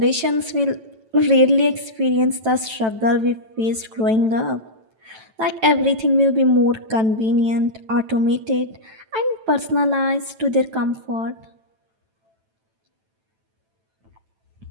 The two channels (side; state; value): left; late; 9.1 ms